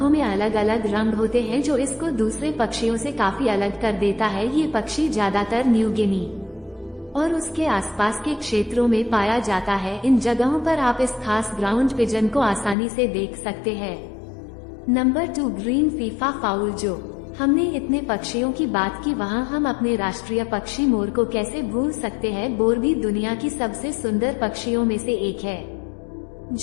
में अलग अलग रंग होते हैं, जो इसको दूसरे पक्षियों से काफी अलग कर देता है। ये पक्षी ज्यादातर न्यू गिनी और उसके आसपास के क्षेत्रों में पाया जाता है। इन जगहों पर आप इस खास ग्राउंड पिजन को आसानी से देख सकते हैं। Number 2 green FIFA foul. जो हमने इतने पक्षियों की बात की, वहाँ हम अपने राष्ट्रीय पक्षी मोर को कैसे भूल सकते हैं। मोर भी दुनिया की सबसे सुंदर पक्षियों में से एक है,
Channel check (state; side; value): drops out; right; at 12.8 s